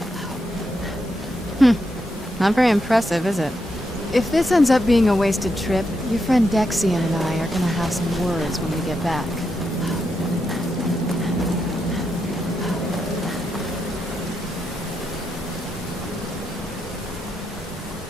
Not very impressive, is it? If this ends up being a wasted trip, your friend Dexian and I are gonna have some words when we get back.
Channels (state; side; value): normal; both; correlation 0.83